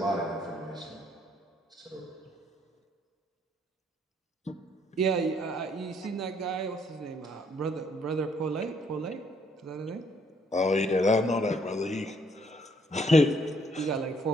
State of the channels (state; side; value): normal; both; correlation 0.67